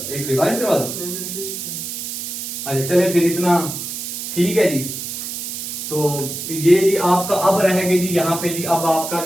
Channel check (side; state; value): right; noise; hiss, 6 dB below the sound